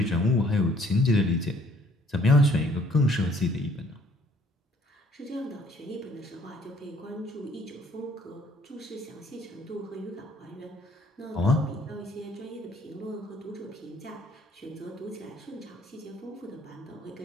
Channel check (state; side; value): normal; both; correlation 0.60